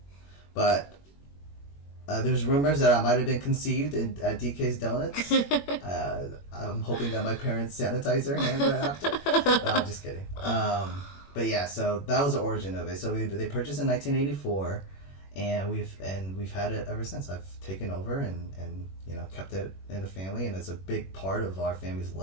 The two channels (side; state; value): right; late; 21 ms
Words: but there's rumors that I might have been conceived at DK's Donuts. I'm hoping that my parents sanitize their hands right after. No, I'm just kidding. But yeah, so that was the origin of it. So they purchased in 1984, and we've had it ever since. I've taken over and kept it in the family, and it's a big part of our family's